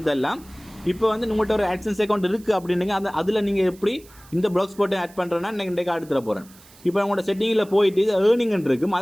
தரலாம். இப்போ உங்கள்கிட்ட ஒரு AdSense அக்கௌண்ட் இருக்குது அப்படின்னீங்க, அதில் நீங்கள் எப்படி இந்த blogspot ஆட் பண்ணுறேன்னா இன்றைக்கு அடுத்துற போகிறேன். இப்போ உங்களோட செட்டிங்கில் போயிட்டு ஏர்னிங் இருக்கும்,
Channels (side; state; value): right; noise; hiss, 24 dB below the sound